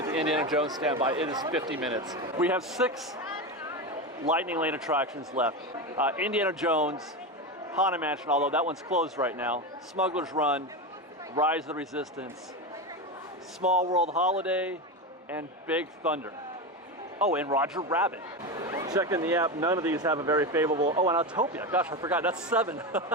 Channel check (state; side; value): normal; both; correlation 0.18